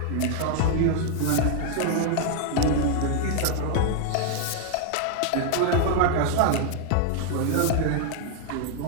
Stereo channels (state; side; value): different; both; correlation 0.00